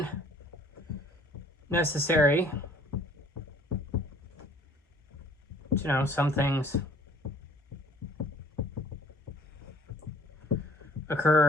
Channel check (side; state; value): both; normal; correlation 0.55